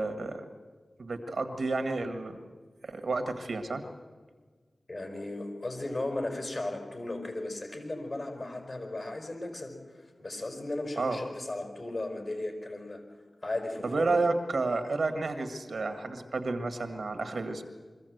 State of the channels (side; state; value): both; normal; correlation 0.94